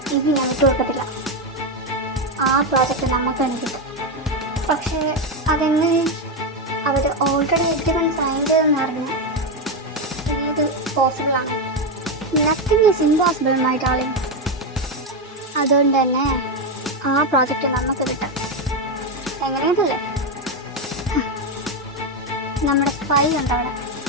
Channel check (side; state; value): both; normal; correlation 0.08